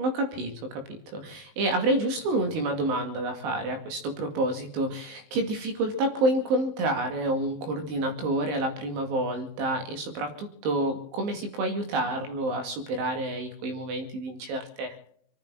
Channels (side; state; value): left; late; 19 ms